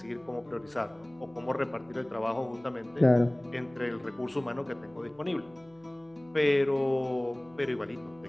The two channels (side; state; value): right; noise; hum, 29 dB below the sound